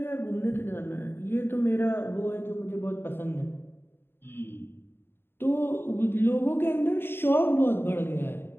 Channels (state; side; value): late; right; 0.11 ms